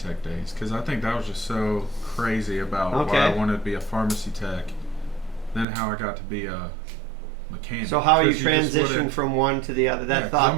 days, because I think that was just so crazy about why I wanted to be a pharmacy tech, then how I got to be a mechanic. So how you transitioned from one to the other, that thought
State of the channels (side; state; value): left; drops out; at 5.7 s